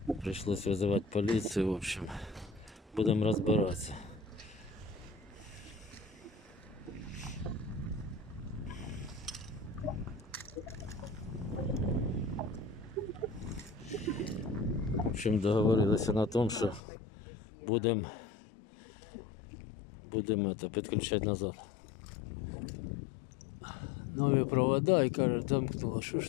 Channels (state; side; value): drops out; right; at 16.8 s